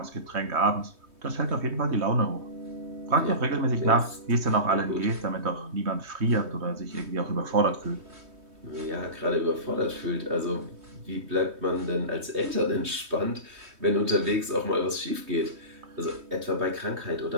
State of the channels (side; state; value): left; late; 3.2 ms